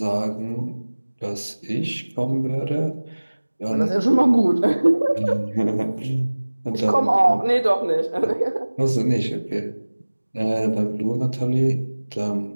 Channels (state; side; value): inverted; both; correlation -1.00